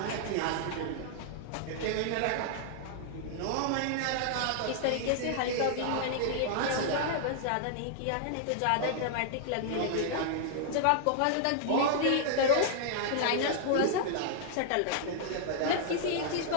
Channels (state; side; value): different; both; correlation -0.01